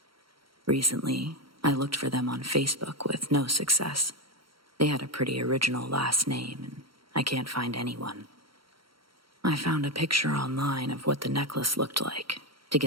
Recently, I looked for them on Facebook with no success. They had a pretty original last name, and I can't find anyone. I found a picture online of what the necklace looked like to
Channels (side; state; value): left; late; 0.74 ms